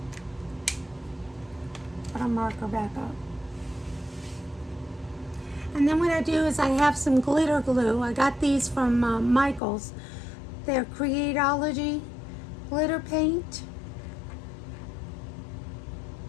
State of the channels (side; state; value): right; drops out; at 9.6 s